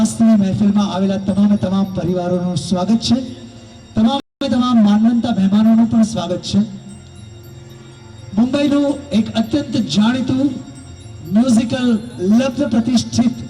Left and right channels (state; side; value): identical; both; correlation 1.00